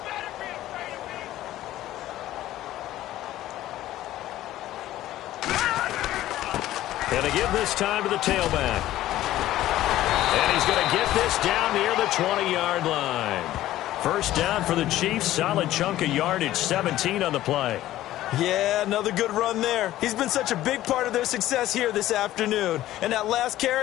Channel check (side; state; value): right; quieter; 14.4 dB